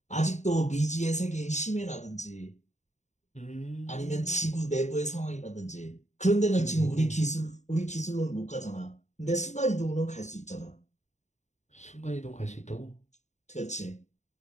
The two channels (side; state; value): right; late; 0.34 ms